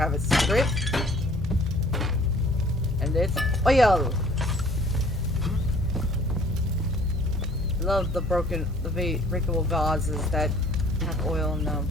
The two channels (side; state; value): both; normal; correlation 0.55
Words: a secret. And it's oil. I love the breakable vases that have oil in them.